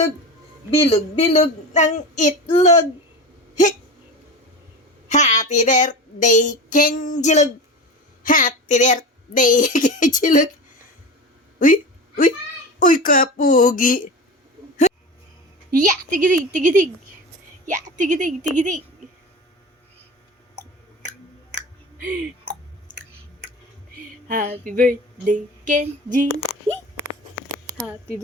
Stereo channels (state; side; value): normal; both; correlation 0.29